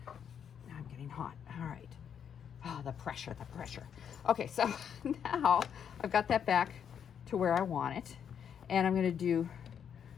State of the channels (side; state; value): right; quieter; 8.1 dB